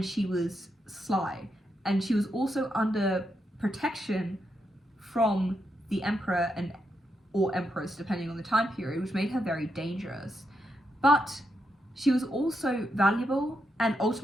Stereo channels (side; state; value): both; normal; correlation 0.83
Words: she was sly. and she was also under protection from the emperor or empress, depending on the time period, which made her very dangerous. But she was also valuable and